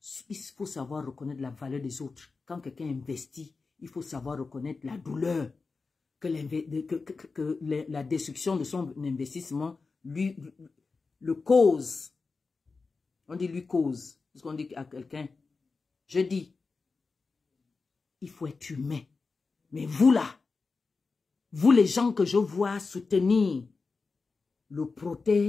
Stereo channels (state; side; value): quieter; right; 4.3 dB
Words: Il faut savoir reconnaître la valeur des autres. Quand quelqu'un investit, il faut savoir reconnaître la douleur que la destruction de son investissement lui le cause. On dit lui cause. Parce qu'on dit à quelqu'un, je dis, il faut être humain. Mais vous là, vous les gens que je vois soutenir le